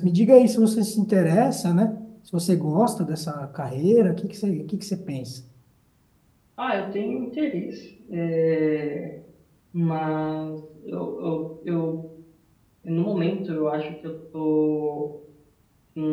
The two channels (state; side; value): identical; both; correlation 1.00